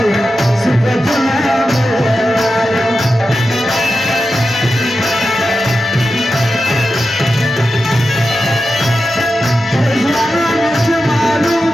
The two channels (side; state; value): both; normal; correlation 0.91